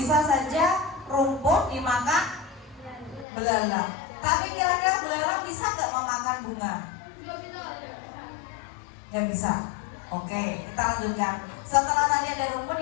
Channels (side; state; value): right; drops out; at 3.2 s